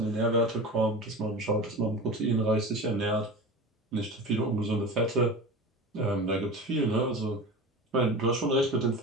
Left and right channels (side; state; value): both; normal; correlation 0.31